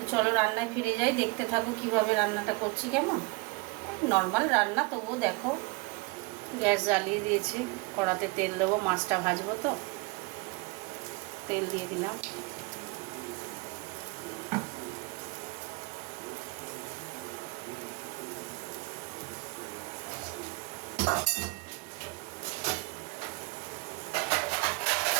চলো রান্নায় ফিরে যাই, দেখতে থাকো কিভাবে রান্নাটা করছি। কেমন নর্মাল রান্না, তবুও দেখো। গ্যাস জ্বালিয়ে দিয়েছি, কড়াতে তেল দেবো, মাছটা ভাজবো। তো তেল দিয়ে দিলাম।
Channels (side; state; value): left; quieter; 26.7 dB